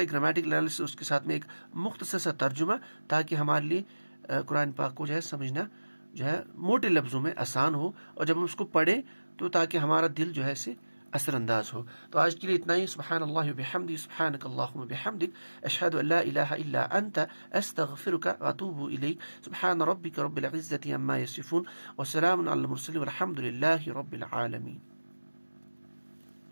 گرامیٹیکل انالیسس، اس کے ساتھ میں ایک مختصر سا ترجمہ، تاکہ ہمارے لیے قرآن پاک کو جو ہے سمجھنا جو ہے موٹے لفظوں میں آسان ہو، اور جب ہم اس کو پڑھیں تو تاکہ ہمارا دل جو ہے اسے اثر انداز ہو. تو آج کے لیے اتنا ہی. سبحان اللہ وبحمدہ، سبحانک اللہم وبحمدک، اشہد ان لا الہ الا انت، استغفرک واتوب الیک. سبحان ربک رب العزة عما یصفون، وسلام علی المرسلین، والحمد للہ رب العالمین.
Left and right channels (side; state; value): both; inverted; correlation -1.00